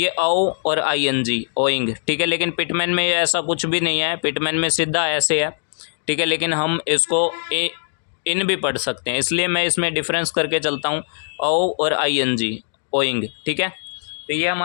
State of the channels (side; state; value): right; silent; digital silence